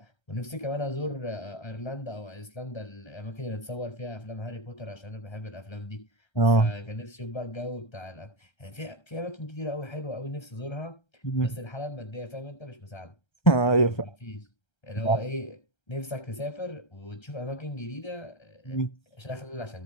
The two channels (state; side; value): late; right; 1.3 ms